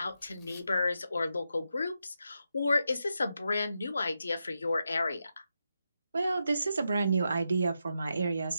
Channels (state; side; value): inverted; both; correlation -0.86